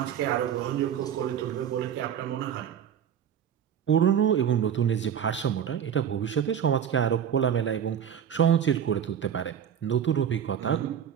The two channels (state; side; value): quieter; left; 8.8 dB